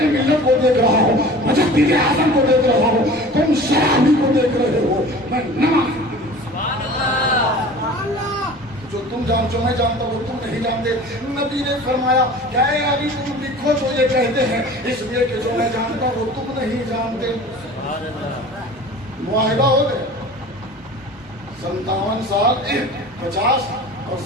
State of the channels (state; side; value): normal; both; correlation 0.41